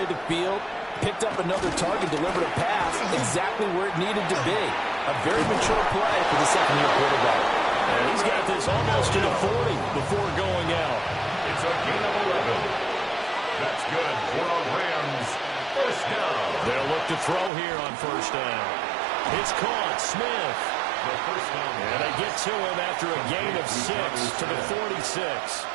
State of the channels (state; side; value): drops out; left; at 17.5 s